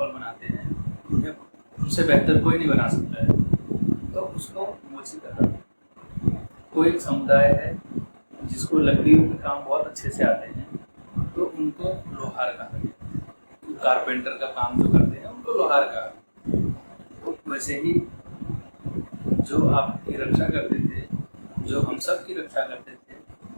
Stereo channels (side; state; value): both; inverted; correlation -1.00